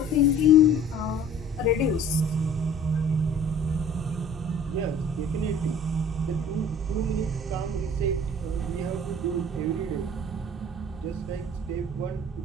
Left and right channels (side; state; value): both; normal; correlation 0.47